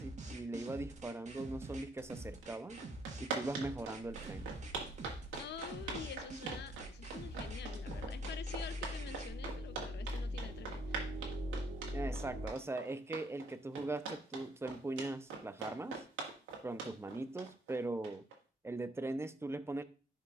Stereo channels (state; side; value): normal; both; correlation 0.68